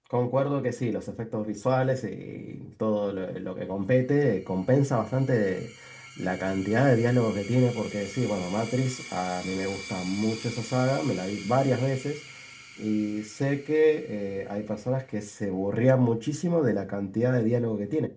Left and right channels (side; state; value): both; identical; correlation 1.00